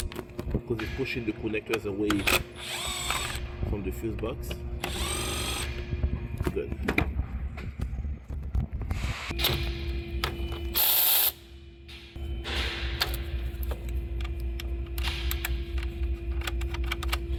Because it's pushing the connectors away from the fuse box. Good.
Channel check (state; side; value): identical; both; correlation 1.00